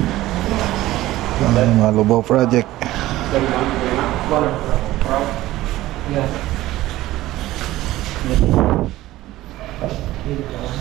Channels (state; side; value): quieter; left; 16.3 dB